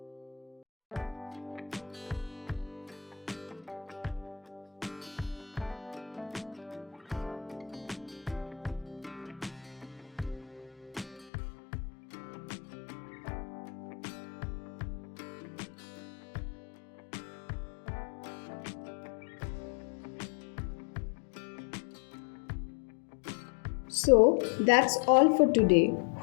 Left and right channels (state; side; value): drops out; right; at 11.3 s